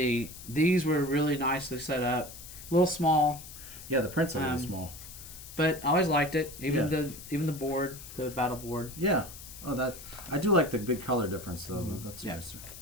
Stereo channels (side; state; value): left; noise; hiss, 14 dB below the sound